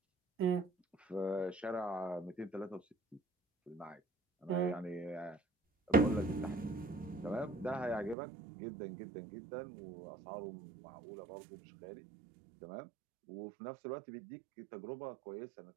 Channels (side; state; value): left; drops out; at 8.2 s